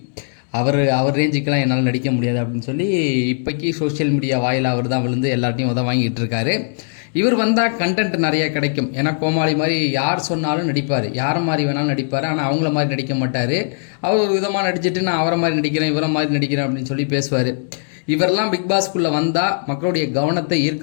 அவர் ரேஞ்சுக்கெலாம் என்னால் நடிக்க முடியாது அப்படின்னு சொல்லி இப்போக்கி சோஷியல் மீடியா வாயில் அவர் தான் விழுந்து எல்லாத்தையும் வாங்கிட்டு இருக்காரு. இவர் வந்தால் கண்டென்ட் நிறைய கிடைக்கும். ஏன்னா கோமாளி மாதிரி யார் சொன்னாலும் நடிப்பார், யாரை மாதிரி வேணாலும் நடிப்பார். ஆனால் அவங்கள மாதிரி நடிக்க மாட்டார். அவர் ஒரு விதமாக நடிச்சுட்டு நான் அவரை மாதிரி நடிக்கிறேன், இவரை மாதிரி நடிக்கிறேன் அப்படின்னு சொல்லி பேசுவார். இவரெல்லாம் பிக் பாஸ்க்குள்ளே வந்தால் மக்களுடைய கவனத்தை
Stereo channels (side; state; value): right; silent; digital silence